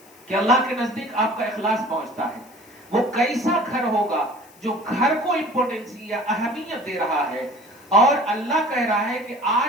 کہ اللہ کے نزدیک آپ کا اخلاص پہنچتا ہے. وہ کیسا گھر ہوگا جو گھر کو امپورٹنس یا اہمیت دے رہا ہے, اور اللہ کہہ رہا ہے کہ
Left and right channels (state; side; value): noise; left; hiss, 26 dB below the sound